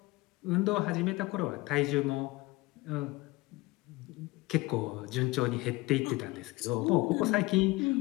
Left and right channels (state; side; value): quieter; right; 21.4 dB